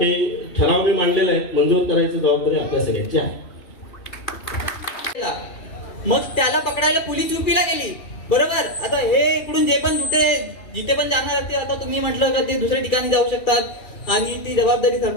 ठराव मी मांडलेला आहे, मंजूर करायची जबाबदारी आपल्या सगळ्यांची आहे. मग त्याला पकडायला पोलीस युपीला गेली, बरोबर. आता हे इकडून जे पण जिथे पण जाणार असतील, आता तुम्ही म्हटलं का ते दुसऱ्या ठिकाणी जाऊ शकतात आणि ती जबाबदारी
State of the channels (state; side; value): late; right; 2.4 ms